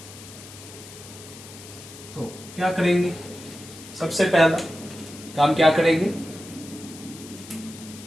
तो क्या करेंगे, सबसे पहला काम क्या करेंगे,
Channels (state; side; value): noise; left; hiss, 16 dB below the sound